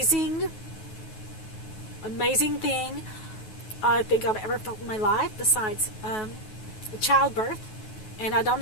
thing I think I've ever felt in my life, besides childbirth. And I don't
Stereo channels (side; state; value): right; late; 9.3 ms